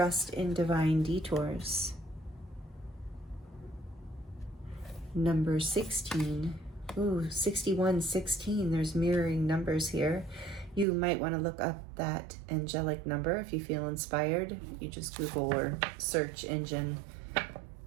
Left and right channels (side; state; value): left; drops out; at 10.9 s